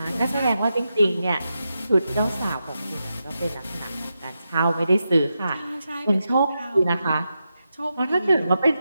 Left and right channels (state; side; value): inverted; both; correlation -0.88